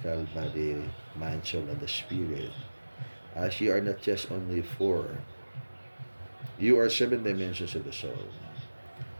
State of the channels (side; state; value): both; inverted; correlation -1.00